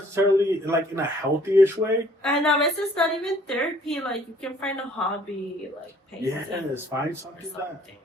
like in a healthy-ish way. And a veces not even therapy. Like you can find a hobby, like painting. Yes, find something that.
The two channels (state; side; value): normal; both; correlation 0.59